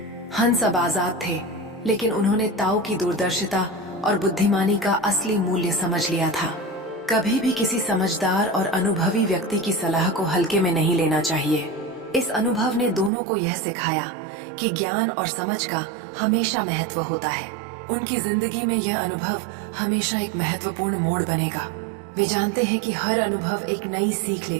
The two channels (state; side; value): drops out; left; at 13.1 s